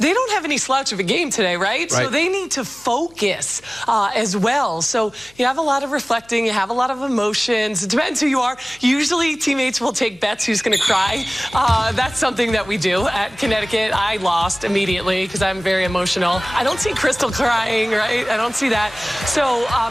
don't have any slouch of a game today, right? So they need to focus as well. So you have a lot of reflecting. You have a lot of emotions. It depends who you are. Usually teammates will take bets who's going to cry. That's something that we do at Connecticut. I lost immediately because I'm very emotional. I don't see Crystal crying, right? I don't see that. So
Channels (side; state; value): left; noise; hum, 28 dB below the sound